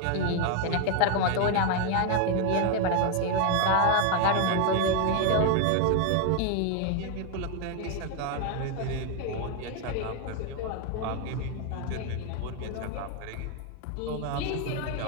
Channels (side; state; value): both; different; correlation 0.01